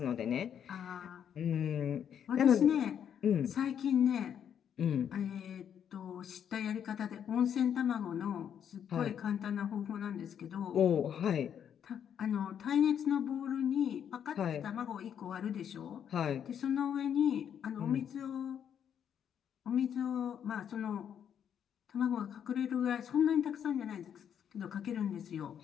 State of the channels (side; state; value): right; quieter; 8.7 dB